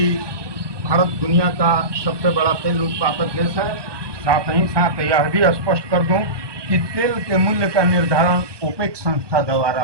भारत दुनिया का सबसे बड़ा तेल उत्पादक देश है। साथ ही साथ यह भी स्पष्ट कर दूं कि तेल के मूल्य का निर्धारण ओपेक संस्था द्वारा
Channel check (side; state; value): left; late; 1.2 ms